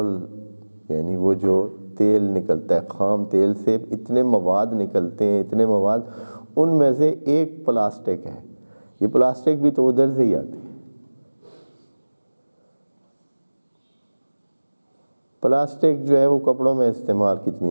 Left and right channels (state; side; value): inverted; both; correlation -1.00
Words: یعنی وہ جو تیل نکلتا ہے، خام تیل سے اتنے مواد نکلتے ہیں، اتنے مواد، ان میں سے ایک پلاسٹک ہے، یہ پلاسٹک بھی تو ادھر سے ہی آتی ہے۔ پلاسٹک جو ہے وہ کپڑوں میں استعمال